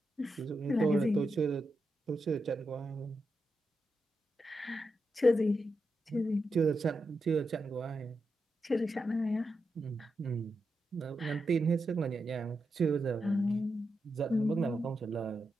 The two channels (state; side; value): normal; both; correlation 0.86